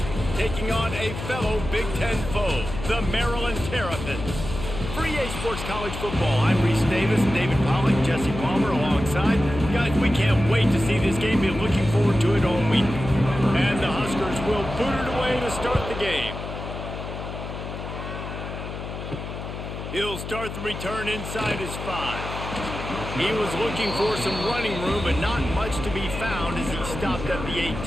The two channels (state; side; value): noise; left; hum, 8 dB below the sound